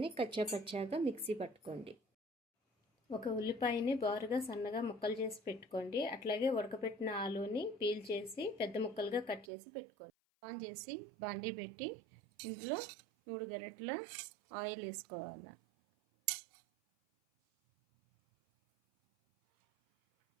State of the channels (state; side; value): drops out; left; at 9.5 s